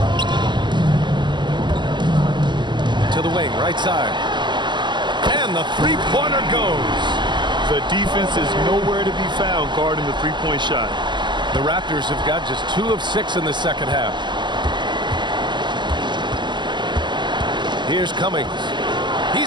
To the wing, right side. And the three-pointer goes. The defense is nowhere to be found guarding the three-point shot. The Raptors have got just 2 of 6 in the second half. Here's Cummings.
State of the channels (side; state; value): left; late; 0.22 ms